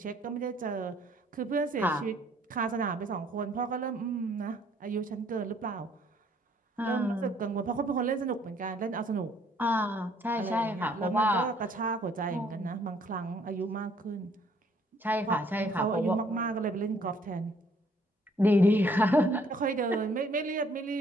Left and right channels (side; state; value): both; normal; correlation 0.63